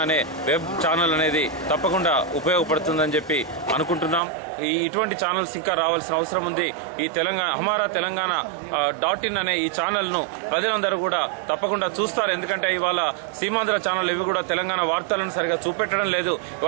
అనే వెబ్ ఛానల్ అనేది తప్పకుండా ఉపయోగపడుతుందని చెప్పి అనుకుంటున్నాం. ఇటువంటి ఛానల్స్ ఇంకా రావాల్సిన అవసరం ఉంది. ఈ హమారా తెలంగాణ .in అనే ఈ ఛానల్ ను ప్రజలందరూ కూడా తప్పకుండా చూస్తారు. ఎందుకంటే ఇవాళ సీమాంధ్ర ఛానల్ ఇవి కూడా తెలంగాణ వార్తలను సరిగా చూపెట్టడం లేదు.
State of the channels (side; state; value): left; drops out; at 4.2 s